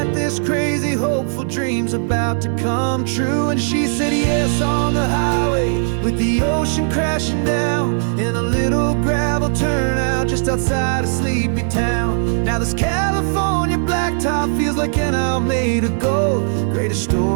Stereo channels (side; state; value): left; silent; digital silence